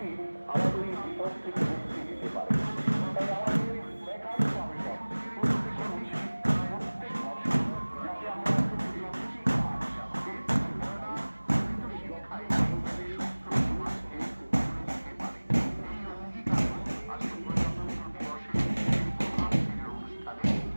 আমাদের এই বিপদ থেকে মুক্তি দিতে পারে। তাই আমাদের একান্ত আবেদন প্রত্যেকের উচিত প্রত্যেক বছর যাতে আমরা একটি কাজ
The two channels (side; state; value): both; inverted; correlation -1.00